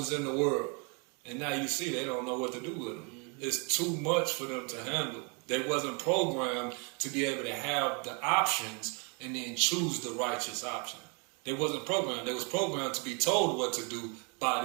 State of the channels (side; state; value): left; quieter; 34.6 dB